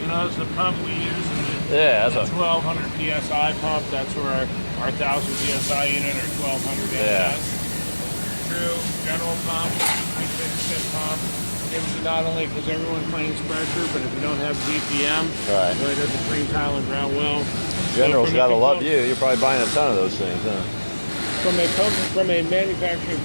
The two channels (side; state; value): both; inverted; correlation -1.00